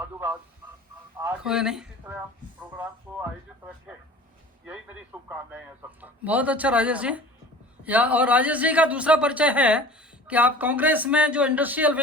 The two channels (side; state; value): both; normal; correlation 0.42